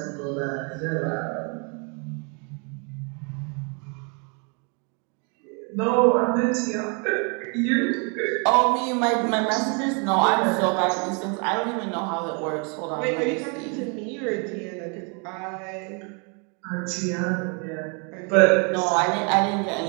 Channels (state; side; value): quieter; left; 35.8 dB